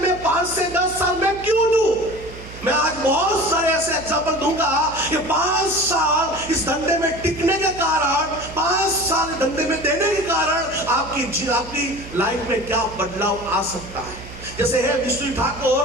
5 से 10 साल में क्यों दूं? मैं आज बहुत सारे ऐसे एग्जाम्पल दूंगा कि 5 साल इस धंधे में टिकने के कारण, 5 साल धंधे में देने के कारण आपकी लाइफ में क्या बदलाव आ सकता है। जैसे है विष्णु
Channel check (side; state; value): right; noise; hum, 15 dB below the sound